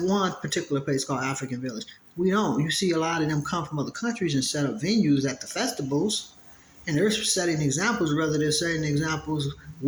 one particular place called African Village. We don't. You see a lot of them come from other countries and set up venues at the festivals. And they're setting examples, whether they're setting examples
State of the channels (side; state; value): both; identical; correlation 1.00